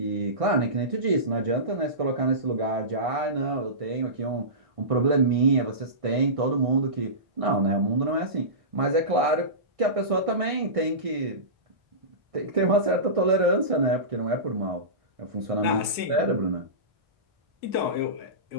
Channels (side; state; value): left; late; 1.6 ms